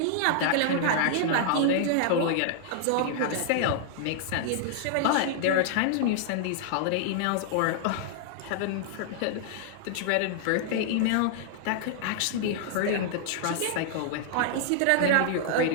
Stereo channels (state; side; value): different; both; correlation -0.01